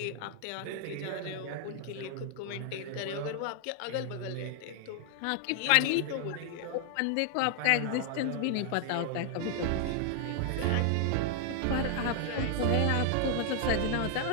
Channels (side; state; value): both; different; correlation 0.00